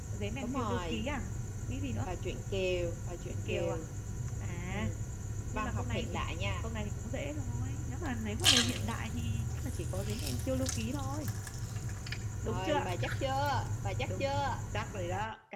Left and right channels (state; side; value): identical; both; correlation 1.00